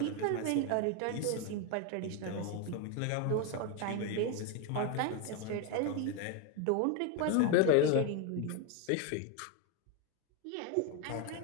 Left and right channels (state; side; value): different; both; correlation 0.02